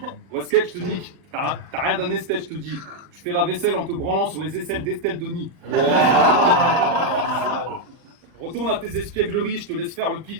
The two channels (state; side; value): late; left; 40 ms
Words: Ouais, sketch, je te nique. T'as rien d'un esthète, je te dis. Je fais la vaisselle en te branlant sur les aisselles d'Estelle Denis. Retourne à tes espiègleries, je te laisse faire le